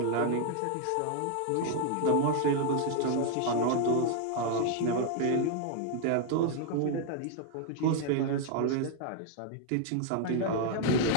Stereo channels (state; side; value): different; both; correlation 0.00